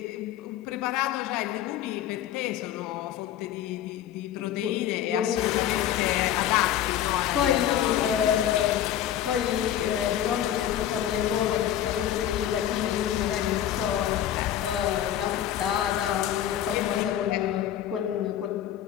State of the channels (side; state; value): right; quieter; 11.2 dB